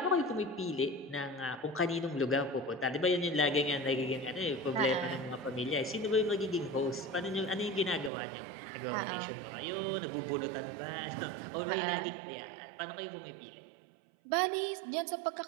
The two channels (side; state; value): left; drops out; at 8.1 s